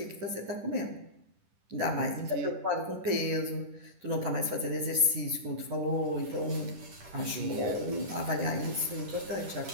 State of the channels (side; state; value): left; late; 10 ms